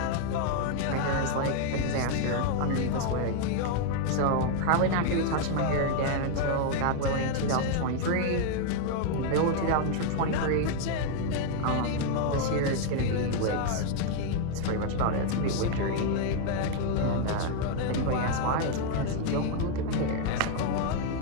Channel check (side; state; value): both; different; correlation 0.00